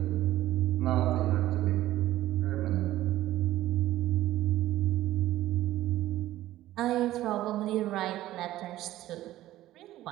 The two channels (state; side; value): quieter; left; 14.8 dB